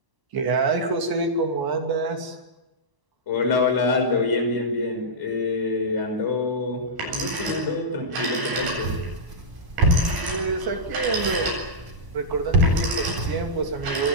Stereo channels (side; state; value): left; late; 1.0 ms